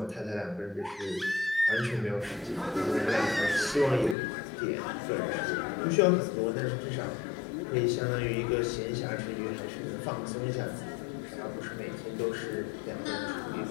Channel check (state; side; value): drops out; right; at 4.2 s